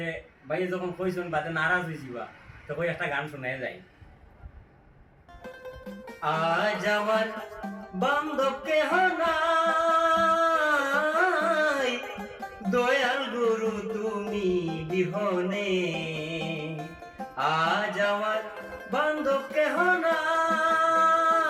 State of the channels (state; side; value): identical; both; correlation 1.00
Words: ভাই যখন কইছেন বাদে নারাজ হয়েছিবা তো কই একটা গান শুনে যাই। আজ আমার বান্ধব কেহ নাই, দয়াল গুরু তুমি বিহনে। আজ আমার বান্ধব কেহ নাই,